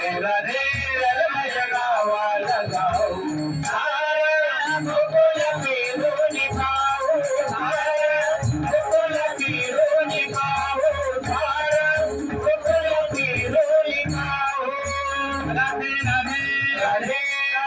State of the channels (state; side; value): identical; both; correlation 1.00